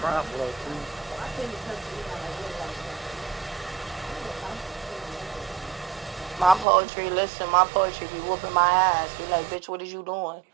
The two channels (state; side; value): drops out; left; at 6.7 s